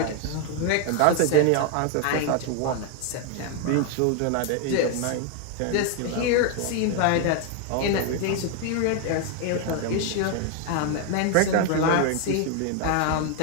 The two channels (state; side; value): different; both; correlation 0.01